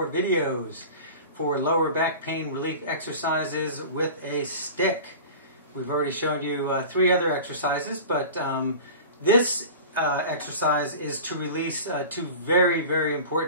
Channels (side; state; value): both; inverted; correlation -0.36